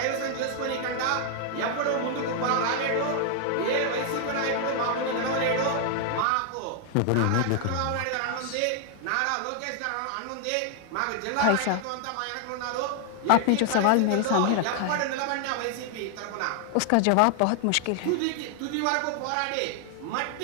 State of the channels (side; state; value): both; different; correlation 0.00